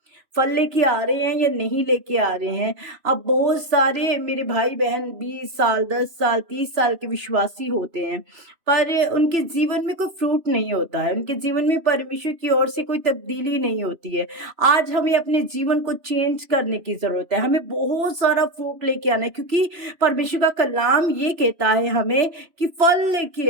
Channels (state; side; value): late; left; 3.0 ms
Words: फल लेके आ रहे हैं या नहीं लेके आ रहे हैं। अब बहुत सारे मेरे भाई बहन 20 साल 10 साल 30 साल के विश्वासी होते हैं, पर उनके जीवन में कोई फ्रूट नहीं होता है, उनके जीवन में परमेश्वर की ओर से कोई तब्दीली नहीं होती है। आज हमें अपने जीवन को चेंज करने की जरूरत है, हमें बहुत सारा फ्रूट लेके आना है, क्योंकि परमेश्वर का कलाम ये कहता है हमें कि फल लेके